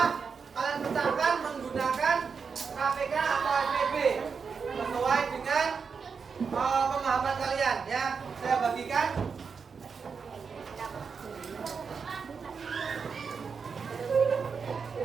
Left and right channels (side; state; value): left; quieter; 5.7 dB